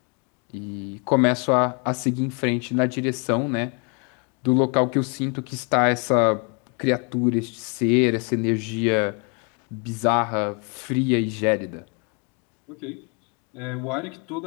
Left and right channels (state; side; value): quieter; right; 35.8 dB